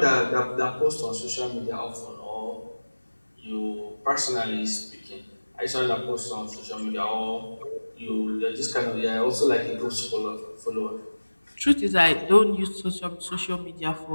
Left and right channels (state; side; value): inverted; both; correlation -1.00